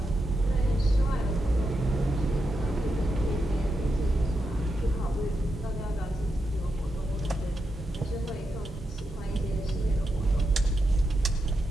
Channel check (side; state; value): both; normal; correlation 0.86